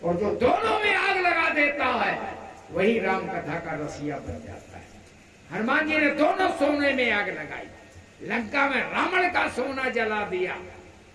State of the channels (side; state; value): both; identical; correlation 1.00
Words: और जो दोनों में आग लगा देता है वही राम कथा का रसिया बन जाता है। हनुमान जी ने दोनों सोने में आग लगाई। लंका में रावण का सोना जला दिया